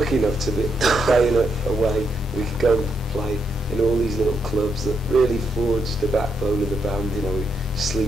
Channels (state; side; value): normal; both; correlation 0.79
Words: enough to be playing a way we could go and play in all these little clubs that really forged the backbone of the band. You know, we